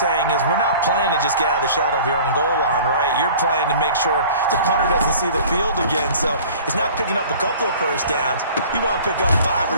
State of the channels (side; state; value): both; inverted; correlation -0.46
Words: is we're not playing to just get out of the shadow of your own goal line, right? You're playing to make sure the punter doesn't see the field again. So it's not picking up a couple of first downs. You want to pick up 5 or